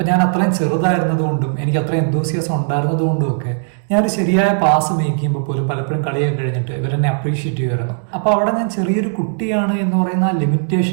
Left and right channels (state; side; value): silent; left; digital silence